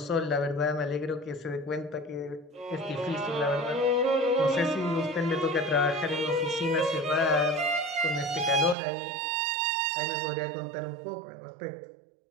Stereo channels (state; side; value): drops out; left; at 8.8 s